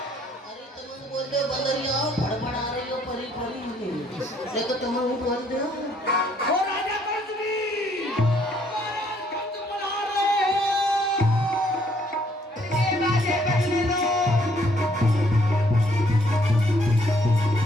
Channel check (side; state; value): both; normal; correlation 0.66